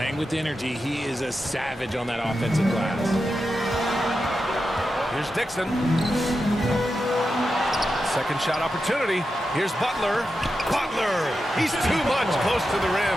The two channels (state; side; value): normal; both; correlation 0.89